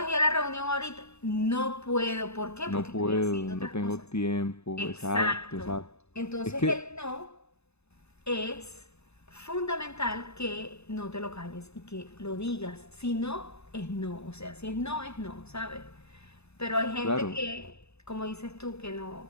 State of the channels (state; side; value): late; right; 0.80 ms